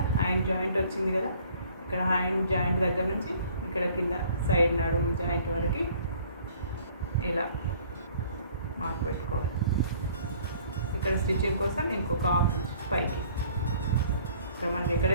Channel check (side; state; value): both; inverted; correlation -0.55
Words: హ్యాండ్ జాయింట్ వచ్చింది కదా, ఇక్కడ హ్యాండ్ జాయింట్ దగ్గర నుంచి ఇక్కడ కింద సైడ్ నడుము జాయింట్ వరకు ఇలా మార్క్ పెట్టుకోవాలి. ఇక్కడ స్టిచ్చింగ్ కోసం ఇంకొక 1/2 ఇంచ్ పైకి, ఇక్కడ మనకి